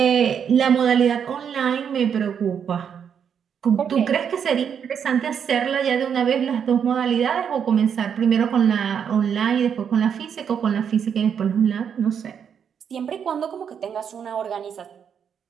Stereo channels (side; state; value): left; quieter; 7.7 dB